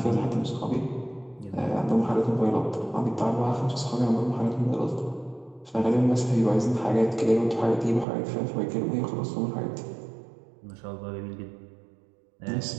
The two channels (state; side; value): drops out; left; at 8.1 s